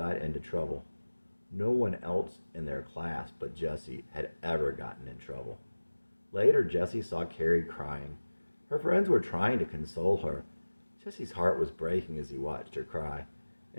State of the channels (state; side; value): inverted; both; correlation -1.00